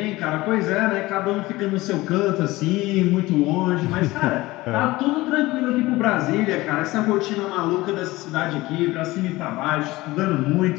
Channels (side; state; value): right; quieter; 19.5 dB